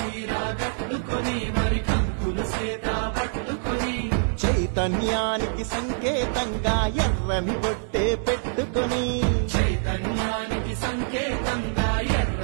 కట్టుకొని మరి కంకులు సేత పట్టుకొని, చైతన్యానికి సంకేతంగా ఎర్రని బొట్టే పెట్టుకొని, చైతన్యానికి సంకేతంగా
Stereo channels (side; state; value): left; silent; digital silence